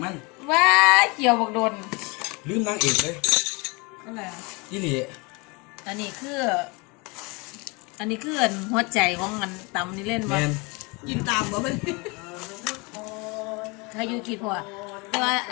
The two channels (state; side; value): quieter; right; 28.3 dB